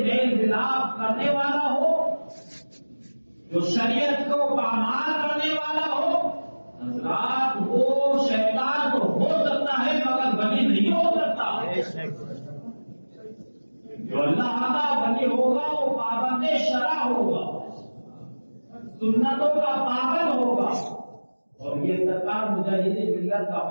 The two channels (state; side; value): inverted; both; correlation -1.00